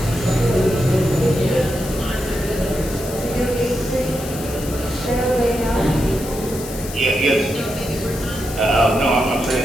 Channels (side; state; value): left; noise; hiss, 12 dB below the sound